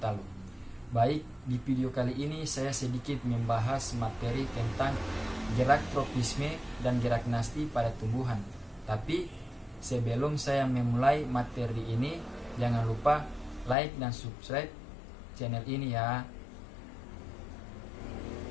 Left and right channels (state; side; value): drops out; right; at 13.8 s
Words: Baik, di video kali ini saya sedikit membahas materi tentang gerak tropisme dan gerak nasti pada tumbuhan. Tapi sebelum saya memulai materi ini, jangan lupa like dan subscribe channel ini ya.